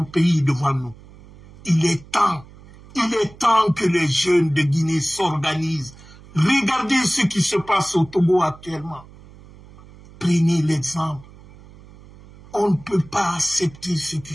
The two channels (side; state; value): right; noise; hum, 22 dB below the sound